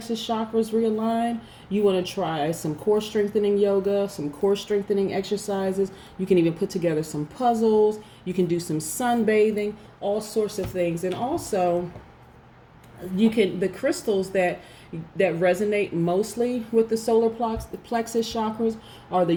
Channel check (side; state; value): both; identical; correlation 1.00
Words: chakras realigned, you want to try some core strengthening yoga, some core strengthening exercises. You can even put together some puzzles. You can do some sunbathing, all sorts of things. And also, the crystals that resonate mostly with the solar plexus chakras are the